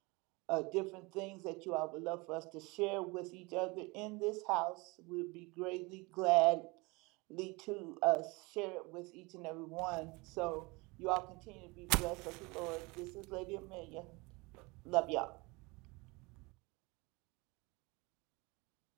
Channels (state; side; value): quieter; left; 25.6 dB